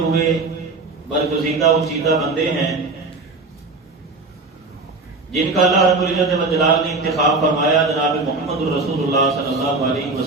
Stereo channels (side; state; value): left; quieter; 3.6 dB